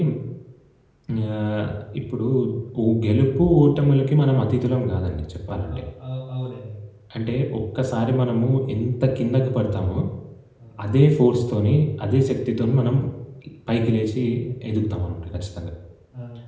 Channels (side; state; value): both; identical; correlation 1.00